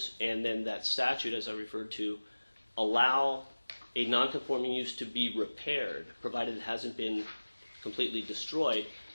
and then that statute, as I referred to, allow a non-conforming use to be repaired, provided it hasn't been completely destroyed,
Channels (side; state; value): both; inverted; correlation -1.00